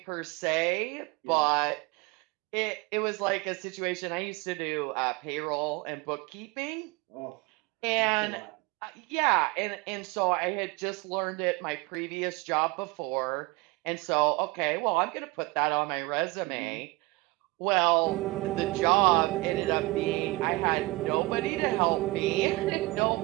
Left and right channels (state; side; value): quieter; left; 22.9 dB